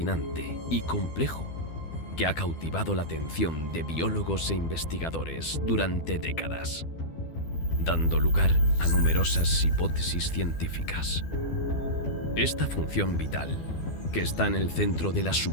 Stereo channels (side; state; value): right; late; 12 ms